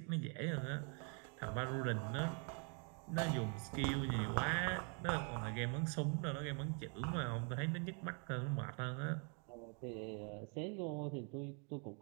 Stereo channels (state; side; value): quieter; left; 38.3 dB